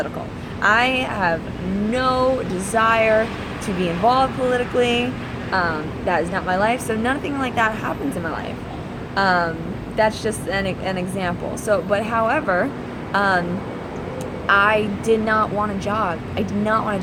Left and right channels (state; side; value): identical; both; correlation 1.00